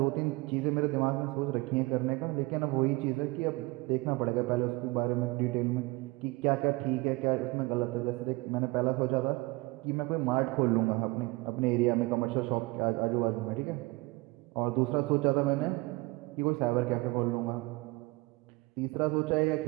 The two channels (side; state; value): left; quieter; 23.6 dB